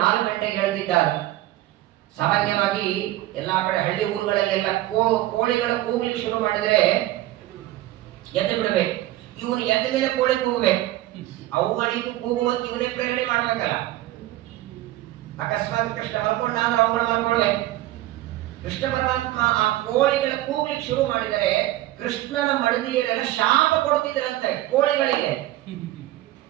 ಗಂಟೆಗೆ ಹೇಳ್ತಿದ್ದಾರೆ. ಸಾಮಾನ್ಯವಾಗಿ ಎಲ್ಲಾ ಕಡೆ ಹಳ್ಳಿ ಊರುಗಳಲ್ಲೆಲ್ಲ ಕೋಳಿಗಳ ಕೂಗ್ಲಿಕ್ಕೆ ಶುರು ಮಾಡಿದ್ರೆ ಎದ್ದು ಬಿಡಬೇಕು. ಇವನು ಎದ್ದ ಮೇಲೆ ಕೋಳಿ ಕೂಗಬೇಕು. ಅವುಗಳಿಗೂ ಕೂಗುವಂತ ಇವನೇ ಪ್ರೇರಣೆ ಮಾಡ್ಬೇಕಲ್ಲ. ಅಕಸ್ಮಾತ್ ಕೃಷ್ಣ ಮಲ್ಕೊಂಡ ಅಂದ್ರೆ ಅವುಗಳು ಮಲ್ಕೊಳ್ಬೇಕು. ಕೃಷ್ಣ ಪರಮಾತ್ಮ ಆ ಕೋಳಿಗಳ ಕೂಗ್ಲಿಕ್ಕೆ ಶುರು ಮಾಡಿದರೆ ಕೃಷ್ಣನ ಮಡದಿಯರೆಲ್ಲ ಶಾಪ ಕೊಡ್ತಿದ್ರಂತೆ ಕೋಳಿಗಳಿಗೆ.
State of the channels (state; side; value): quieter; left; 15.7 dB